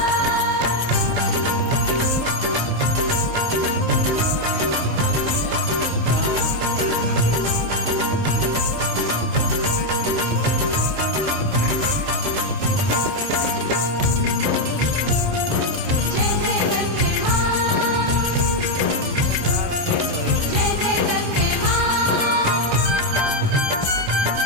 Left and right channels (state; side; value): late; left; 27 ms